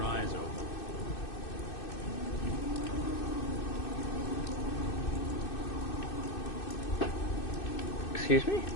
eyes open. Excuse me?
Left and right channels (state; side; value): late; right; 2.6 ms